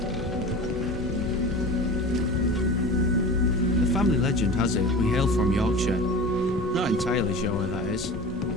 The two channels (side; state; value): both; normal; correlation 0.34